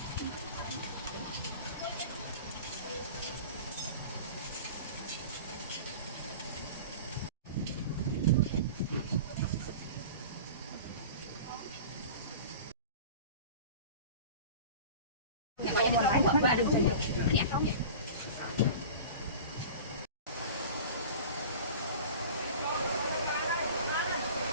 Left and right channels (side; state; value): both; inverted; correlation -0.37